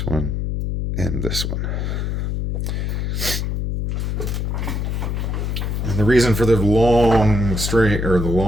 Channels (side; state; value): left; noise; hum, 1 dB below the sound